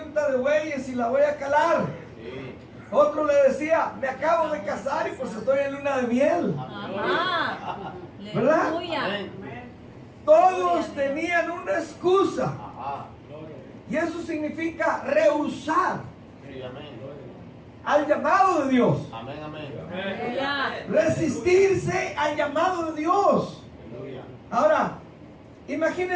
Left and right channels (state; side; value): identical; both; correlation 1.00